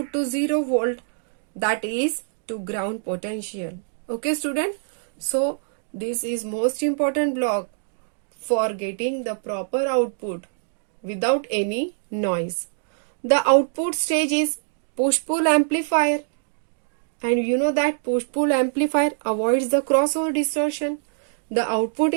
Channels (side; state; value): left; silent; digital silence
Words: to 0 volt, that is to ground potential. Okay student, so this is most important block for getting the proper output without any noise. The output stage is push-pull amplifier, and you know that push-pull amplifier avoids the crossover distortion. The output